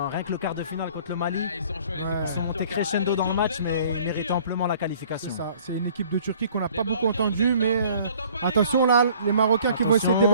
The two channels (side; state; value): both; inverted; correlation -0.54